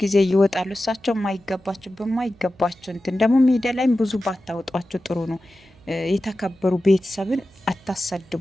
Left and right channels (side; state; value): right; noise; hum, 28 dB below the sound